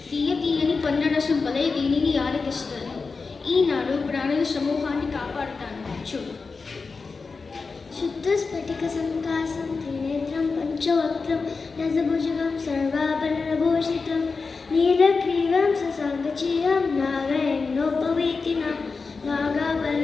తీయని పన్నరసం వలె దీనిని ఆరగిస్తాను. ఈనాడు ప్రాణుల సమూహాన్ని కాపాడుతాను. చూడు. శుద్ధ స్ఫటిక సంకాసం త్రినేత్రం పంచవక్త్రం రసభుజగం సర్వాభరణభూషితం నీలగ్రీవం ససాంగచీయం నాగయన్నోపవీతినం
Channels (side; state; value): right; quieter; 4.5 dB